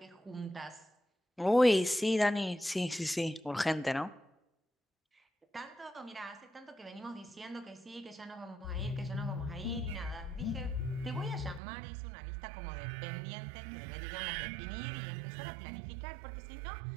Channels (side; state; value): left; drops out; at 11.6 s